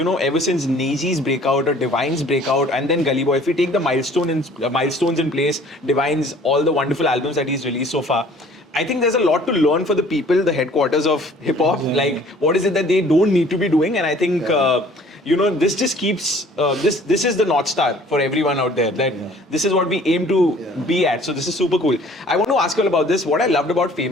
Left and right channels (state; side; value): normal; both; correlation 0.53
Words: know, ever since Neji's breakout or Divine's breakout and then Gully Boy, if we take the milestones in place, Divine's, all the wonderful albums that he's released so far, I think there's a lot to learn for the people, the headquarters of hip hop. Like, what is it that they don't need to be doing? And I think, you know, this just keeps, this is the North Star for everyone out there. That this is what we aim to be at. So this is super cool. I want to ask you all about this. What I loved about